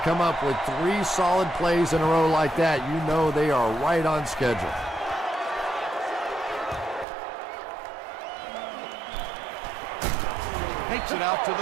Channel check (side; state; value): left; drops out; at 7.1 s